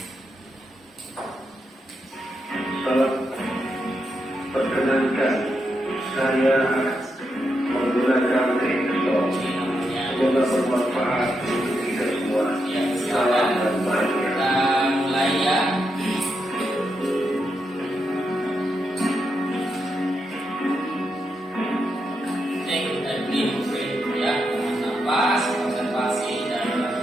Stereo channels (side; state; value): both; normal; correlation 0.83